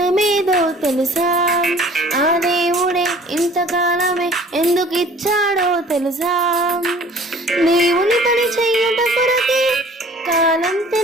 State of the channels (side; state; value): both; normal; correlation 0.50